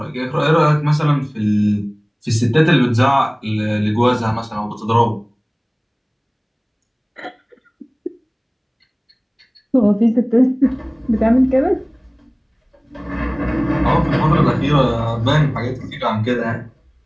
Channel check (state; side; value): identical; both; correlation 1.00